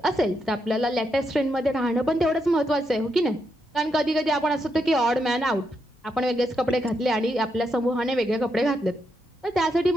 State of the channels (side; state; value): both; normal; correlation 0.81